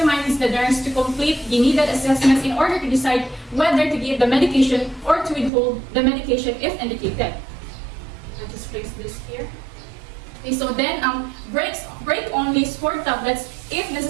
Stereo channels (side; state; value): left; drops out; at 5.5 s